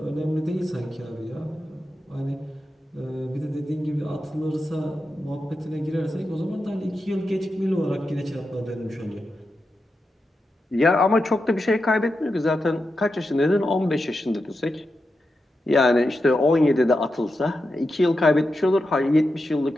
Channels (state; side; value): normal; both; correlation 0.89